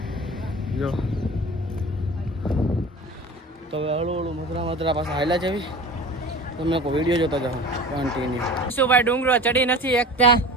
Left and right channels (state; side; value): normal; both; correlation 0.37